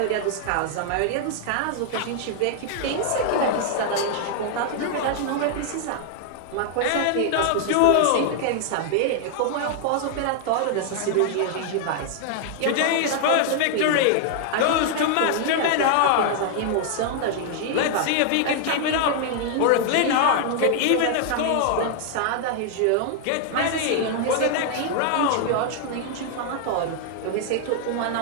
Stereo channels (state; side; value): different; both; correlation 0.00